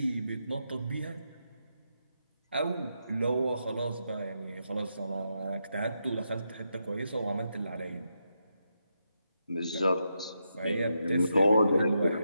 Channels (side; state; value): both; inverted; correlation -0.83